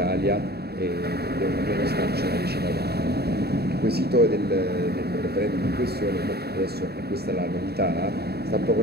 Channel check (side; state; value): left; late; 0.47 ms